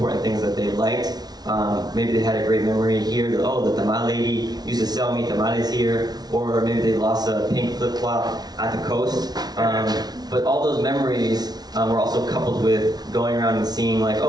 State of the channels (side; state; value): left; late; 0.19 ms